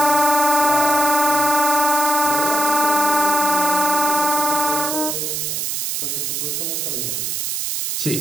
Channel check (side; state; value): right; noise; hiss, 2 dB below the sound